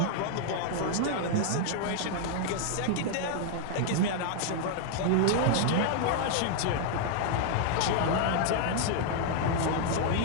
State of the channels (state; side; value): different; both; correlation 0.00